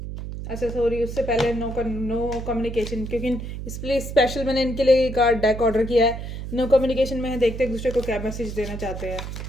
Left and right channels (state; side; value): noise; right; hum, 7 dB below the sound